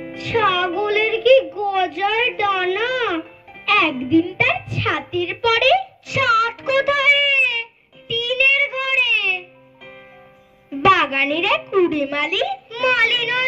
ছাগলের কি গজার ডানা। একদিন তার ছাতির পরে ছাদ কোথায়, টিনের ঘরে। বাগানের এক কুড়ে মালি, মালি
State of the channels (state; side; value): identical; both; correlation 1.00